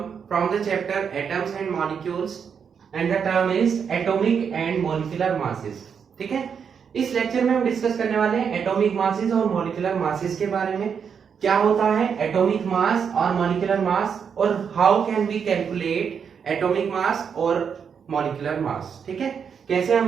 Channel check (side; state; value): left; quieter; 6.9 dB